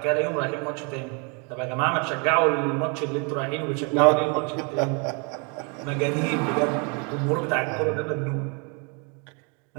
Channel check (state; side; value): quieter; left; 34.4 dB